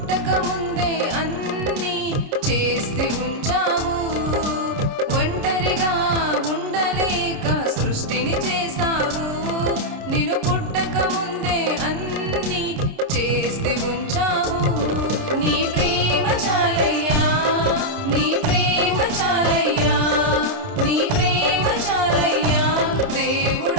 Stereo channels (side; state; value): left; late; 30 ms